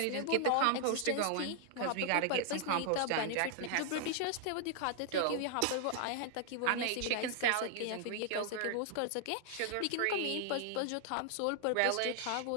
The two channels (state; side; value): different; both; correlation 0.00